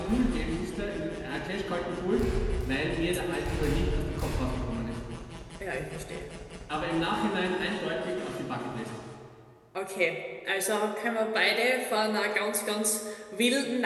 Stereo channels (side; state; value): both; identical; correlation 1.00